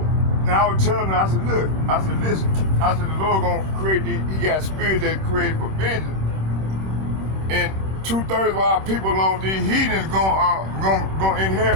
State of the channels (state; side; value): late; left; 26 ms